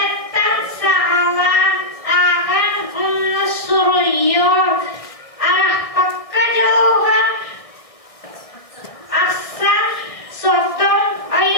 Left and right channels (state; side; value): late; right; 1.6 ms